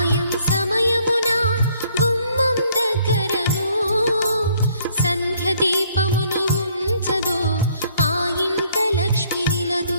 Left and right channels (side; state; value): both; inverted; correlation -0.64